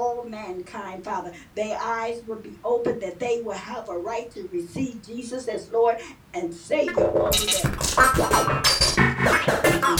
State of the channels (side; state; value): both; identical; correlation 1.00